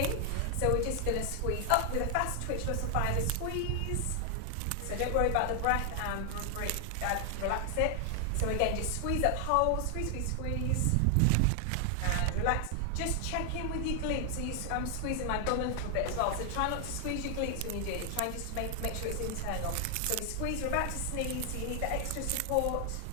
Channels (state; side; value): different; both; correlation 0.00